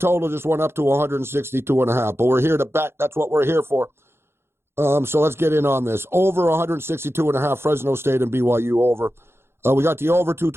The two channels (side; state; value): left; late; 0.12 ms